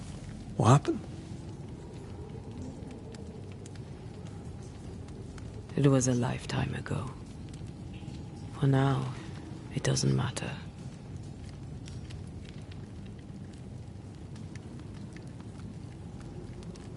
What happened? It was a lifetime ago. For now, it doesn't matter.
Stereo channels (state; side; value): identical; both; correlation 1.00